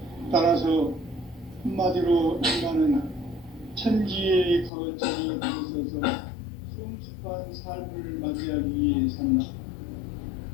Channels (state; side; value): drops out; right; at 4.7 s